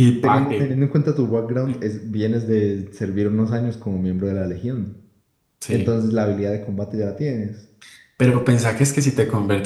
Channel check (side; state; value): both; identical; correlation 1.00